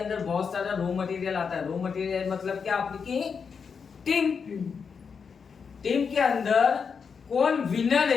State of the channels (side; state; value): right; quieter; 6.0 dB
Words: बहुत सारा रॉ मटेरियल आता है। रॉ मटेरियल मतलब क्या? आपकी टीम के अंदर कौन विनर